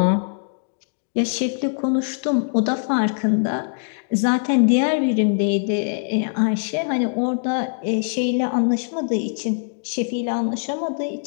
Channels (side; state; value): right; silent; digital silence